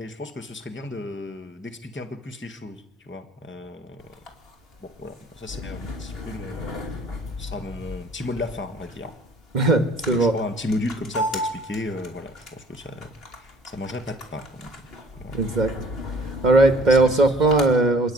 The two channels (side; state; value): both; normal; correlation 0.54